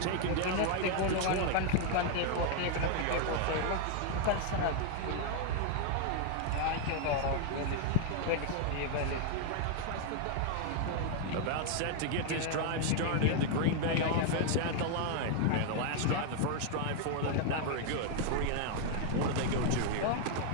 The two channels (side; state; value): both; different; correlation 0.00